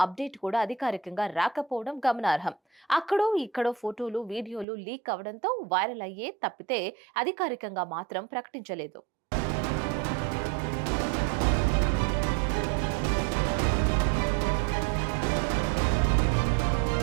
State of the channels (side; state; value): left; drops out; at 4.7 s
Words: అప్డేట్ కూడా అధికారికంగా రాకపోవడం గమనార్హం. అక్కడో ఇక్కడో ఫోటోలు వీడియోలు లీక్ అవడంతో వైరల్ అయ్యే తప్పితే అధికారికంగా మాత్రం ప్రకటించలేదు.